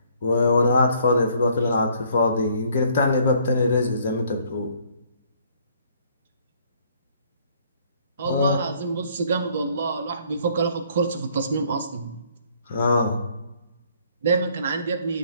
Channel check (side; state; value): both; inverted; correlation -0.63